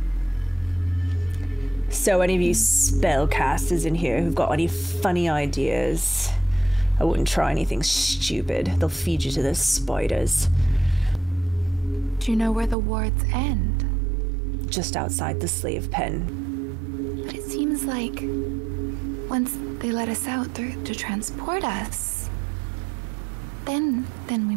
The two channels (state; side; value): drops out; left; at 12.8 s